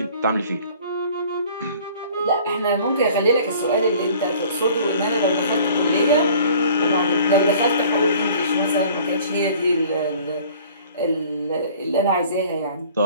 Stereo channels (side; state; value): both; inverted; correlation -0.50